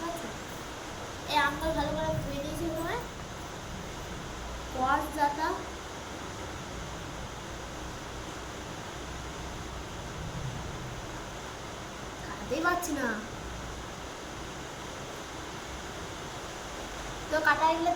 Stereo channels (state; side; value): identical; both; correlation 1.00